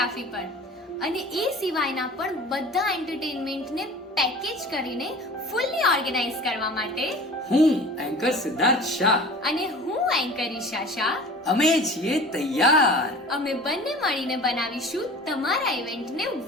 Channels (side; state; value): both; normal; correlation 0.41